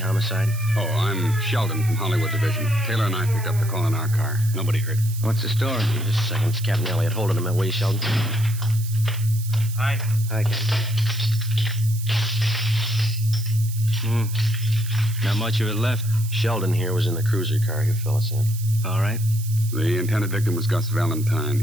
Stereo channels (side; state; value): right; noise; hiss, 14 dB below the sound